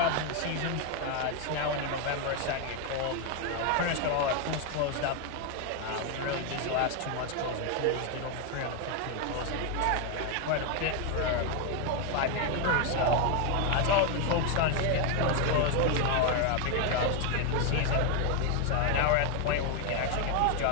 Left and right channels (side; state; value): both; different; correlation 0.01